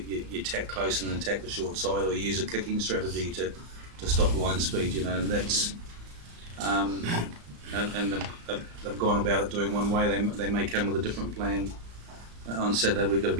tack close and then attack the short side, or you use a kicking strategy to stop line speed. And that's and they've gone about it doing one way. They may come with a different plan on Saturday. We've got to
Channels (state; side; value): late; left; 35 ms